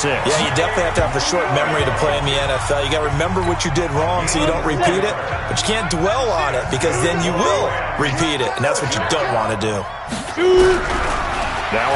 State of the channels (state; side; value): identical; both; correlation 1.00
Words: Yeah, you definitely have to have a short memory to play in the NFL. You got to remember what you did wrong so you don't repeat it, but you can't dwell on it because then you will repeat it, and that's what you don't want to do. Now